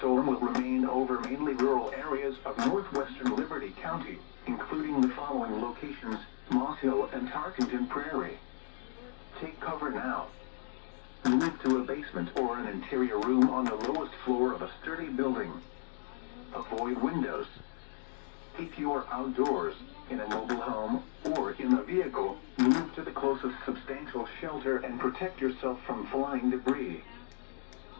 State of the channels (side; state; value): right; silent; digital silence